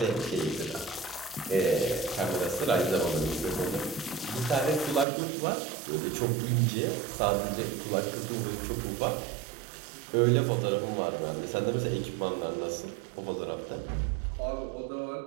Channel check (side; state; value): left; drops out; at 5.1 s